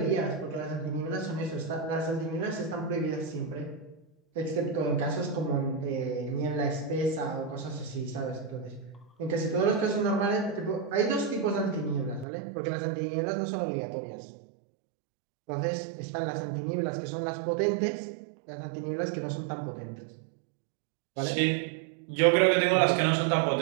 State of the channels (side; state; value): left; drops out; at 12.2 s